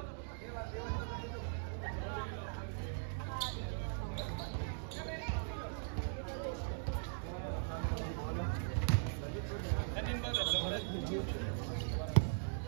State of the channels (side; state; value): left; silent; digital silence